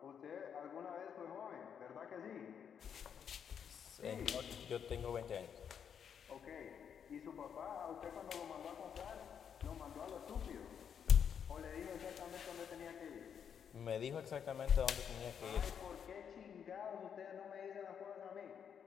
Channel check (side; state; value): right; quieter; 7.9 dB